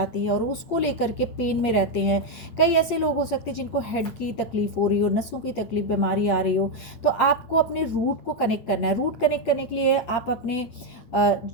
है और उसको लेकर के पेन में रहते हैं। कई ऐसे लोग हो सकते हैं जिनको हेड की तकलीफ हो रही हो, नसों की तकलीफ, बीमारी आ रही हो। तो आपको अपने रूट को कनेक्ट करना है। रूट कनेक्ट करने के लिए आप अपने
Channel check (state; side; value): late; right; 8.9 ms